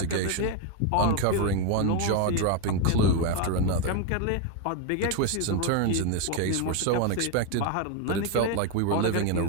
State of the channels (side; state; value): both; different; correlation 0.02